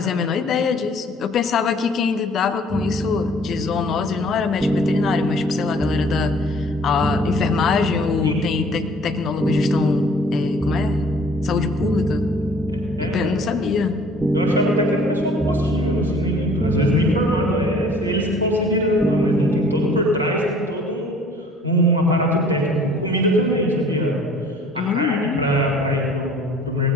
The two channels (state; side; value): normal; both; correlation 0.53